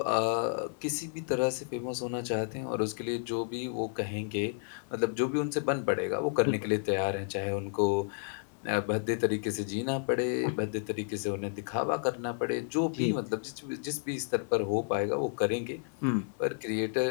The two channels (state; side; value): silent; right; digital silence